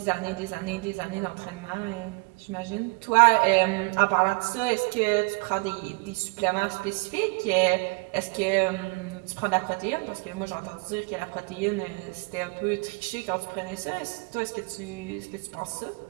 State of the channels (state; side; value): quieter; left; 28.9 dB